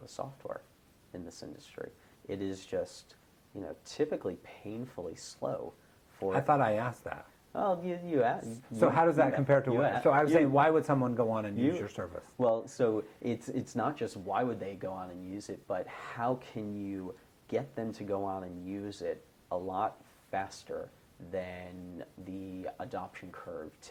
of software in this industry? It is just, typically painfully slow. I thought I asked that. Well, you asked. So how does that compare to what? So I was saying, why would someone go on and use your service? Well, so it's not just why would they go on and use it, but how can you get them to go on and use it a lot faster than the adoption curve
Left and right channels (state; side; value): identical; both; correlation 1.00